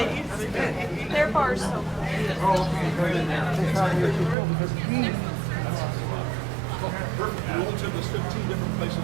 Their bar's so cool. Perfect. We only took us 15 different places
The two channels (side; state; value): left; drops out; at 4.4 s